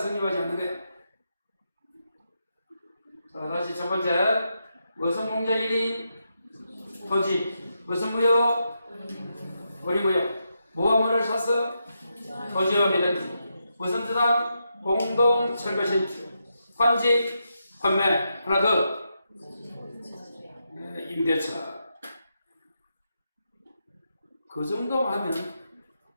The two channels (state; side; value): inverted; both; correlation -0.84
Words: 않는 거예요. 자, 다시 첫 번째 무슨 공자 1인 토지 무슨 무효? 우리 무효. 뭐와 뭐를 샀어? 토지와 미등기. 무슨 저당? 공동 철거 신축. 환지 환매. 하나 더. 임대차. 그 정도 하면